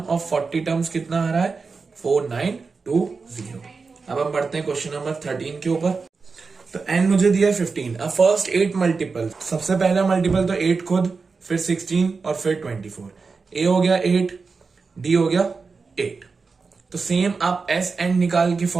ऑफ 40 टर्म्स कितना आ रहा है 4920। अब हम बढ़ते हैं क्वेश्चन नंबर 13 के ऊपर। तो n मुझे दिया है 15। अब फर्स्ट 8 मल्टीपल, सबसे पहला मल्टीपल तो 8 खुद, फिर 16 और फिर 24। a हो गया 8, d हो गया 8। तो सेम आप एस एंड निकाल के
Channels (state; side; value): quieter; left; 4.6 dB